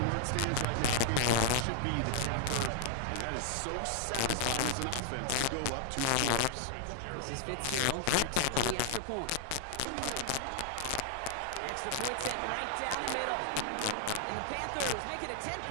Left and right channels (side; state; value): both; different; correlation -0.01